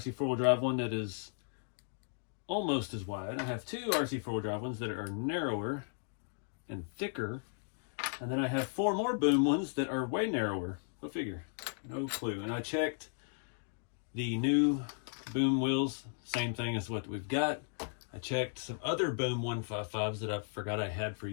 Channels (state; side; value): silent; right; digital silence